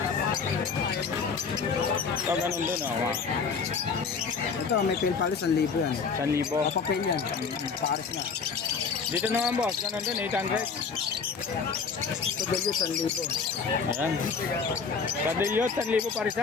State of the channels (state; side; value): quieter; right; 5.5 dB